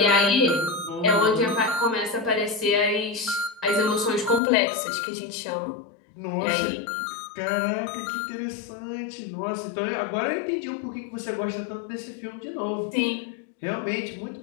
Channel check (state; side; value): drops out; right; at 4.4 s